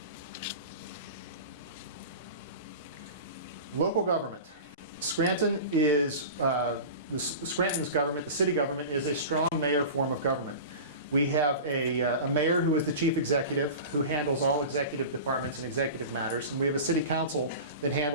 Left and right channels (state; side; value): inverted; both; correlation -0.33